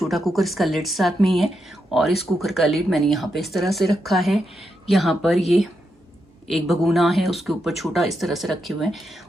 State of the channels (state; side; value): normal; both; correlation 0.84